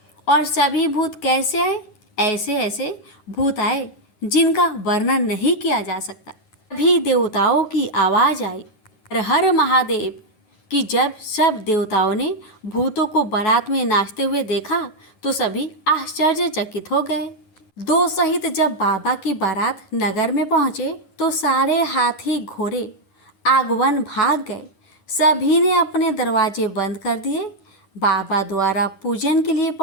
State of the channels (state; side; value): late; right; 9.4 ms